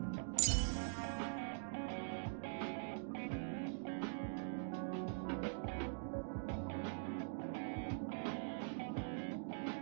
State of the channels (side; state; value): left; silent; digital silence